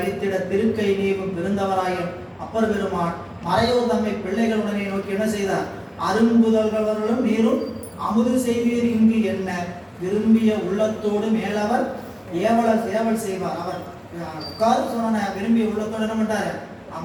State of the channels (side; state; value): both; identical; correlation 1.00